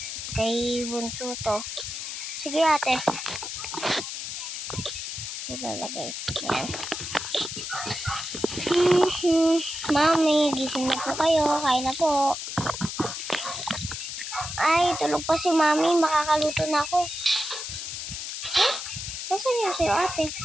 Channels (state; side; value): noise; left; hiss, 6 dB below the sound